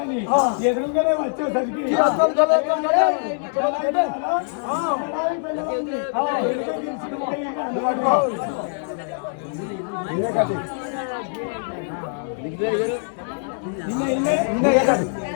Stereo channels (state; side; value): silent; right; 63 dB below the other